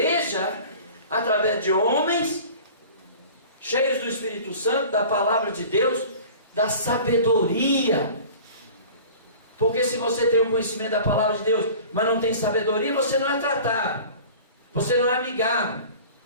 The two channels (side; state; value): both; inverted; correlation -0.42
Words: através de homens cheios do Espírito Santo, da palavra de Deus, da sabedoria. Porque se você tem o conhecimento da palavra de Deus, mas não tem sabedoria, você não é tratado, você não é amigável,